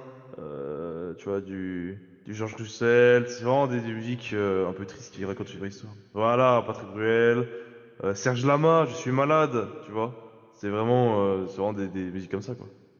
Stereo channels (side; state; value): both; identical; correlation 1.00